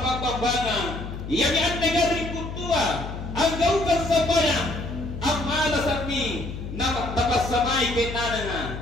iyan ang nagaring kutua ang gawkan sa bayan ang malasan ni napasamay kay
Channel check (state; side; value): noise; left; hum, 8 dB below the sound